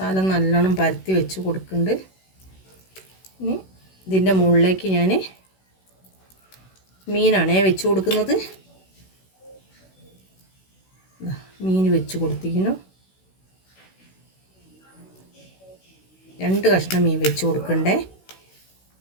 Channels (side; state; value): right; late; 16 ms